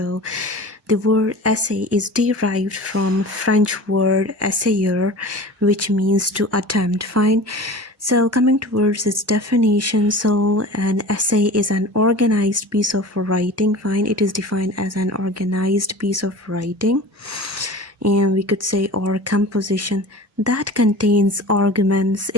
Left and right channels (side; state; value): both; normal; correlation 0.37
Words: the word essay is derived from French word essayer, which means to attempt. Fine. So coming towards its definition, so an essay is an organized piece of writing. Fine. It is defined as an organized piece of writing, and we could say, or composition that contains arguments,